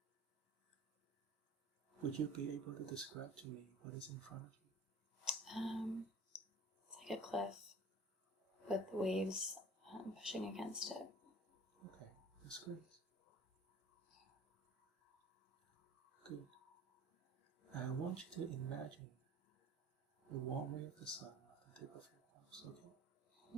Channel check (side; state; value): both; normal; correlation 0.44